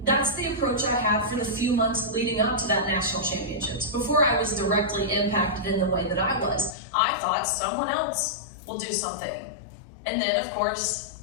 that's the approach I had for the few months leading up to that national championships. Before I was directly impacted in the way that I was, I thought someone else will do something. And then, of course,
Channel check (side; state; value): right; drops out; at 6.8 s